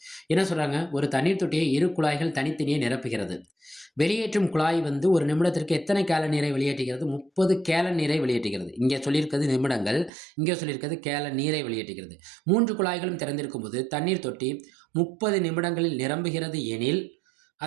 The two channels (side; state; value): left; drops out; at 10.1 s